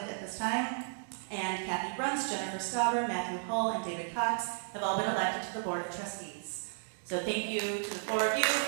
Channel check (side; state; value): left; silent; digital silence